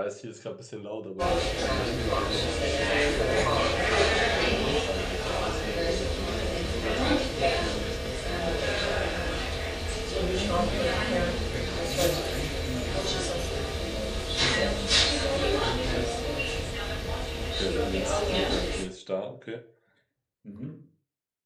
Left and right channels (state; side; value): identical; both; correlation 1.00